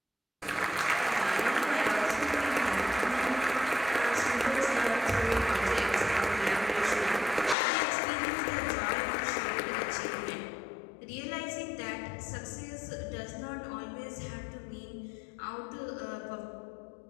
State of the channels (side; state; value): right; drops out; at 7.6 s